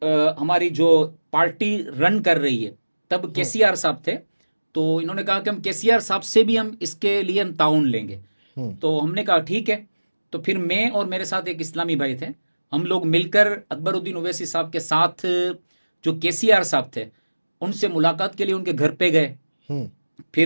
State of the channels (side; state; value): both; inverted; correlation -1.00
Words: ہماری جو پارٹی رن کر رہی ہے، تب KCR صاحب تھے، تو انہوں نے کہا کہ ہم KCR صاحب سے بھی ہم اس کے لیے ہم تعاون لیں گے. تو ہم نے کہا ٹھیک ہے. تو پھر میں اور میرے ساتھ ایک اسلامی بھائی تھے، ہم لوگ مل کر اکبر الدین اویسی صاحب کے ساتھ جو KCR صاحب تھے ان سے ملاقات کے لیے ان کے گھر پہ گئے.